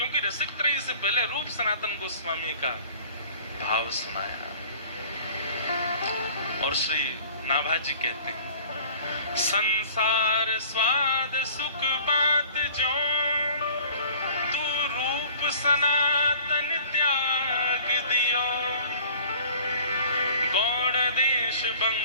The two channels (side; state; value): both; inverted; correlation -0.47